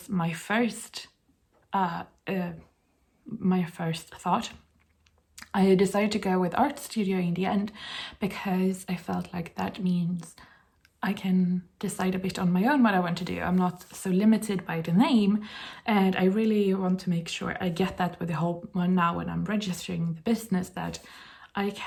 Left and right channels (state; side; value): identical; both; correlation 1.00